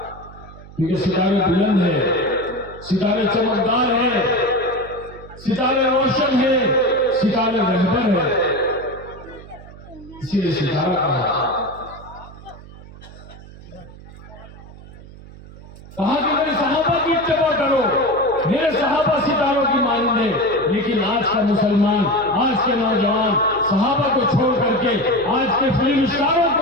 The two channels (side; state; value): right; noise; hum, 18 dB below the sound